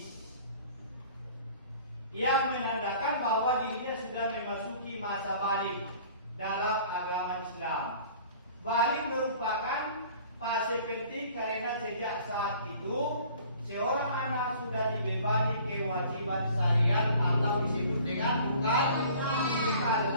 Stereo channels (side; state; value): both; inverted; correlation -0.50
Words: yang menandakan bahwa dirinya sudah memasuki masa balik dalam agama Islam. Balik merupakan fase penting karena sejak saat itu seorang anak sudah dibebani kewajiban syariat atau disebut dengan mukallaf.